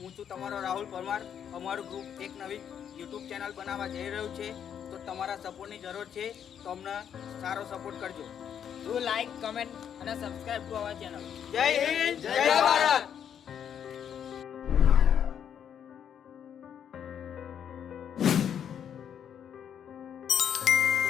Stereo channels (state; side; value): quieter; right; 8.7 dB